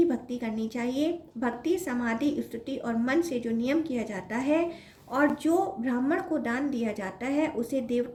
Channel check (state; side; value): identical; both; correlation 1.00